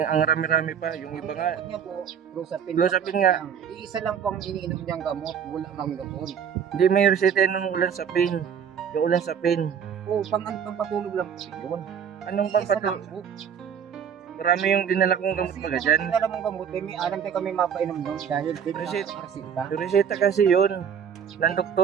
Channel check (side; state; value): left; quieter; 7.7 dB